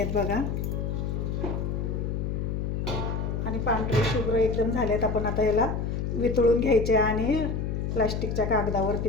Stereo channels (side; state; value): left; noise; hum, 2 dB below the sound